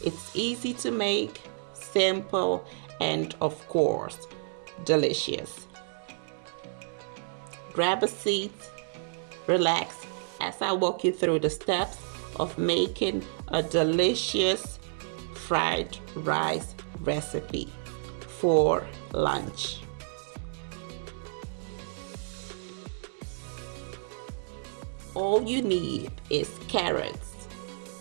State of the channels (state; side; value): silent; left; 58 dB below the other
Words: easy to make, simple, and of course, delicious. Grab a seat, relax as I walk you through the steps of making a delicious fried rice recipe for lunch. All you need is carrots,